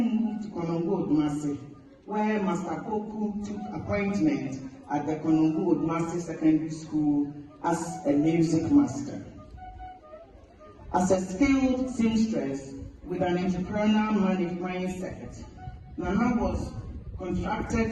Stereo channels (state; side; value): identical; both; correlation 1.00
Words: to Konongo, where Master Koku took appointment at the Konongo Secondary School as a music master. As a skilled seamstress with an entrepreneurial mindset, Nana was contracted